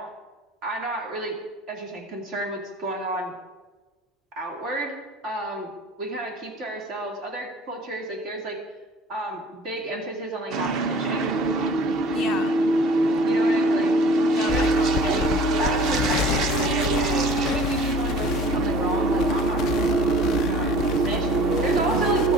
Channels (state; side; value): normal; both; correlation 0.47